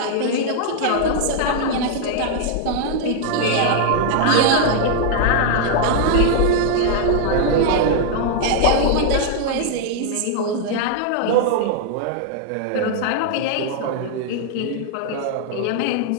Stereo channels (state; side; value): different; both; correlation 0.00